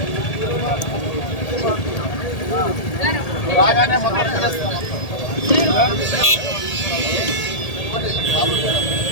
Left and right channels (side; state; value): right; late; 1.8 ms